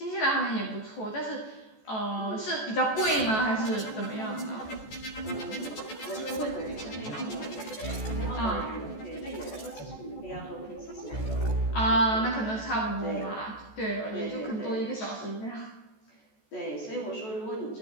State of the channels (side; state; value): right; late; 14 ms